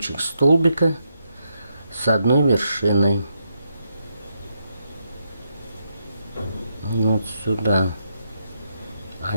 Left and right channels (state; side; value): inverted; both; correlation -0.81